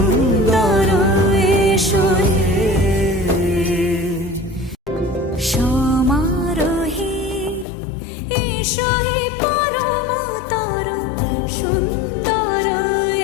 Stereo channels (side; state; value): right; drops out; at 7.7 s